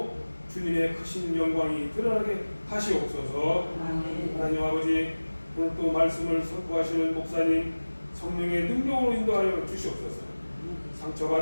주님의 크신 영광이 드러나게 하시옵소서. 하나님 아버지, 오늘 또 말씀을 선포하시는 목사님 성령의 능력으로 인도하여 주시옵소서.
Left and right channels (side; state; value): both; inverted; correlation -1.00